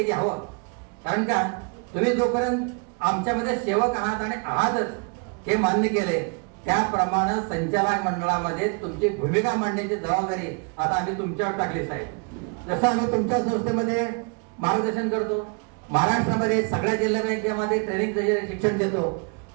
घ्यावं. कारण का तुम्ही जोपर्यंत आमच्यामध्ये सेवक आहात आणि आहातच हे मान्य केले, त्याप्रमाणे संचालक मंडळामध्ये तुमची भूमिका मांडण्याची जबाबदारी आता आम्ही तुमच्यावर टाकली साहेब. जसं आम्ही तुमच्या संस्थेमध्ये मार्गदर्शन करतो, महाराष्ट्रामध्ये सगळ्या जिल्हा बँकेमध्ये ट्रेनिंगचं शिक्षण देतो,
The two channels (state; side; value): quieter; left; 35.5 dB